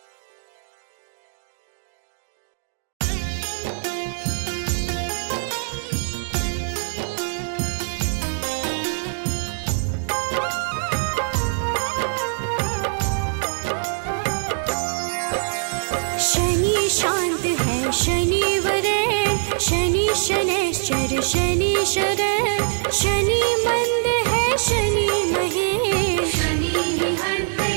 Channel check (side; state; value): left; silent; digital silence